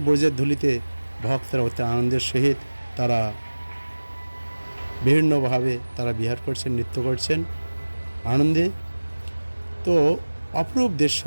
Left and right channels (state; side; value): inverted; both; correlation -1.00